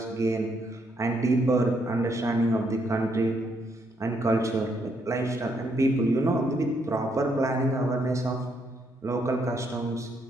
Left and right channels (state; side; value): normal; both; correlation 0.74